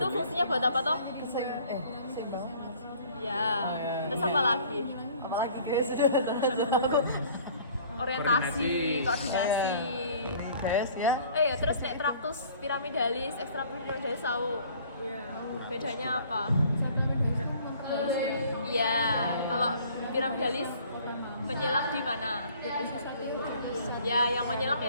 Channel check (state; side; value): inverted; both; correlation -0.53